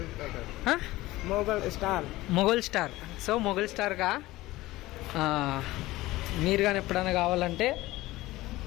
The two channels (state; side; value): quieter; right; 18.1 dB